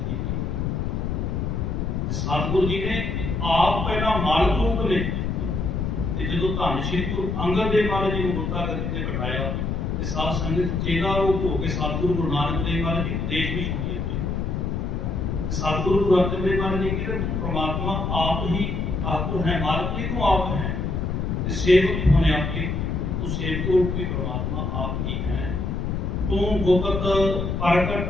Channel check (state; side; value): noise; left; rumble, 1 dB below the sound